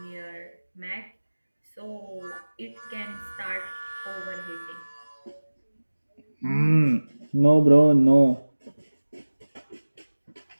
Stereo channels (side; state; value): both; inverted; correlation -1.00